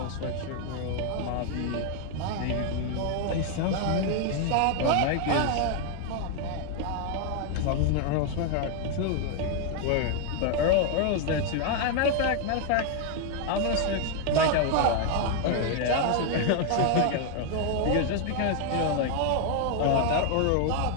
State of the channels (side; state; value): both; different; correlation 0.00